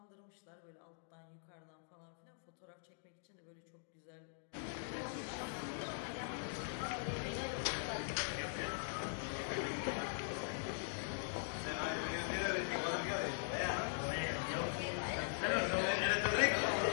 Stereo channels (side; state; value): right; silent; digital silence